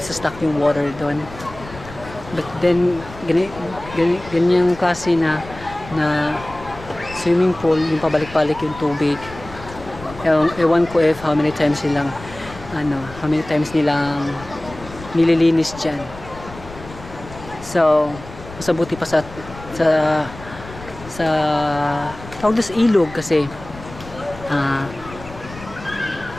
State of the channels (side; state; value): left; noise; rumble, 16 dB below the sound